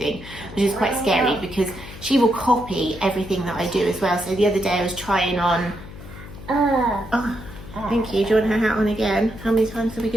which is quite scary because she will copy everything that I do as well. So the other day I was trying on, oh, thank you. Do you want her hat on again? How many times are we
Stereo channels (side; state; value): left; noise; hum, 15 dB below the sound